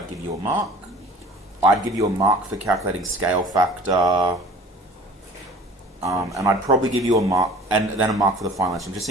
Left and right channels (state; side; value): normal; both; correlation 0.45